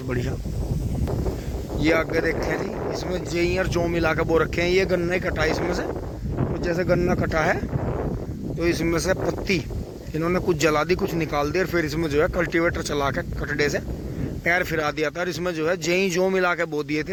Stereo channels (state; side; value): identical; both; correlation 1.00